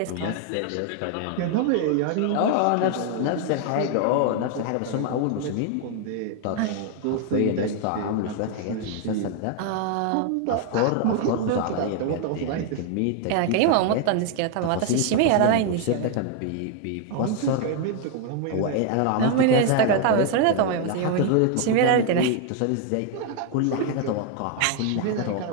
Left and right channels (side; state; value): both; different; correlation 0.00